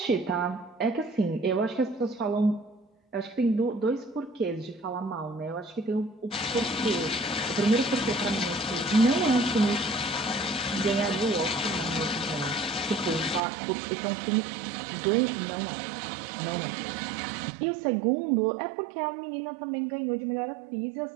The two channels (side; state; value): left; drops out; at 13.4 s